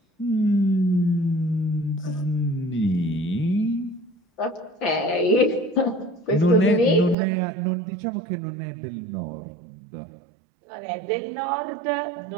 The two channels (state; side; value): drops out; left; at 7.2 s